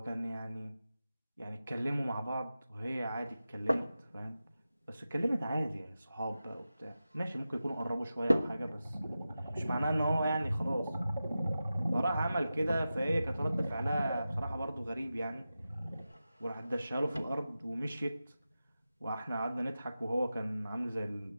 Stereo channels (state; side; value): inverted; both; correlation -0.93